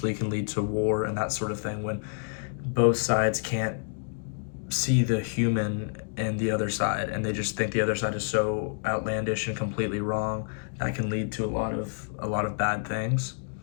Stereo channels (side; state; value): right; silent; 59 dB below the other